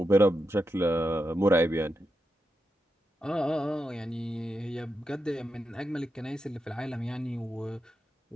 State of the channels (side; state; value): both; normal; correlation 0.87